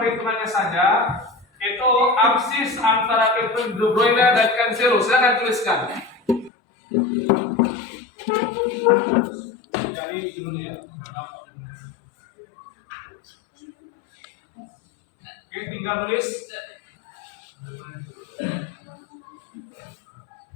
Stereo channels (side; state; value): right; drops out; at 6.5 s